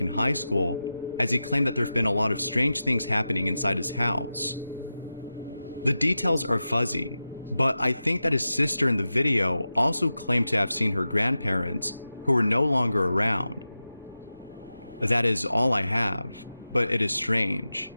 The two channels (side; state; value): both; inverted; correlation -0.93